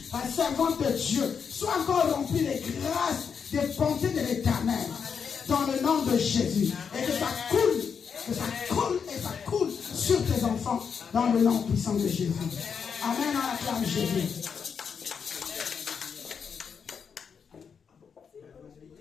la servante de Dieu. Sois encore rempli des grâces, des bontés de l'Éternel. Dans le nom de Jésus. Et que ça coule sur tes enfants. Dans le nom puissant de Jésus. Amen, on acclame Jésus.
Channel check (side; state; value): right; quieter; 6.5 dB